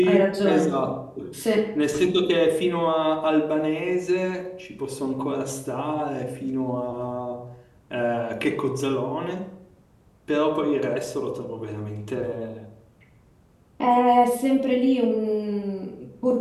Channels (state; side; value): identical; both; correlation 1.00